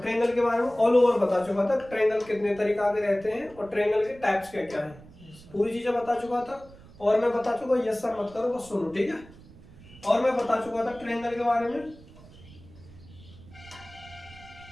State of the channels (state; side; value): noise; right; rumble, 21 dB below the sound